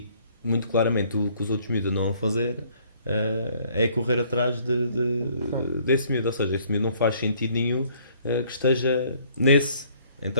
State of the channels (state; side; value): inverted; both; correlation -0.61